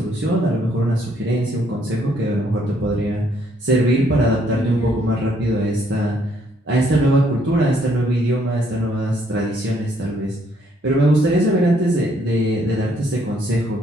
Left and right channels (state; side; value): normal; both; correlation 0.68